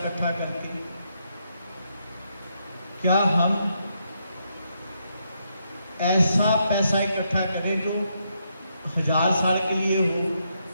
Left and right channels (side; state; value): both; inverted; correlation -0.79